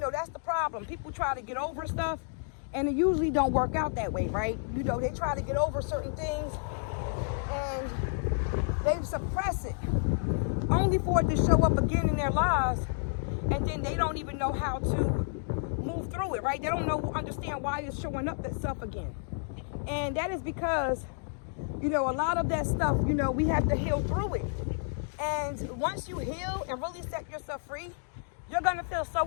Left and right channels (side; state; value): right; silent; digital silence